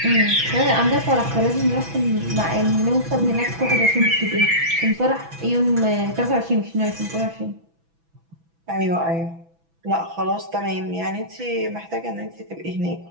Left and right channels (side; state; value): left; late; 6.1 ms